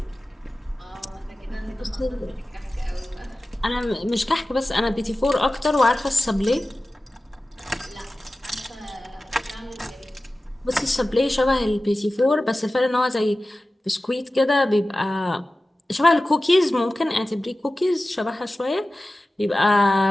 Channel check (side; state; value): both; normal; correlation 0.96